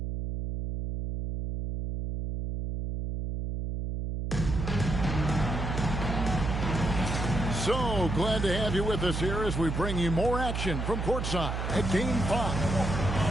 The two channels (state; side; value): noise; right; hum, 3 dB below the sound